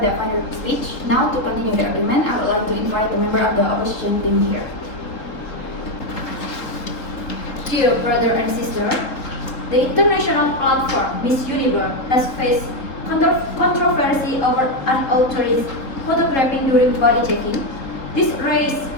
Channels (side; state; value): right; late; 3.7 ms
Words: final speech. Now, to continue the argument, I would like to invite the member of the opposition team here. Dear brother and sister, the international platform Miss Universe has faced controversy over unauthorized photographing during body checking. This raised